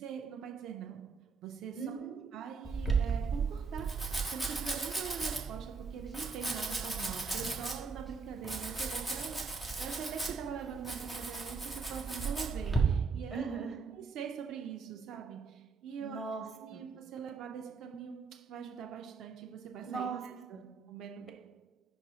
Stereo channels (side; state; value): left; quieter; 4.8 dB